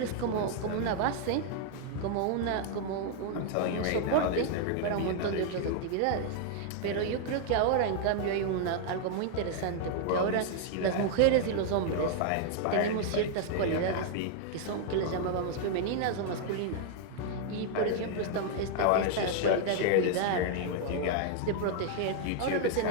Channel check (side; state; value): both; different; correlation 0.00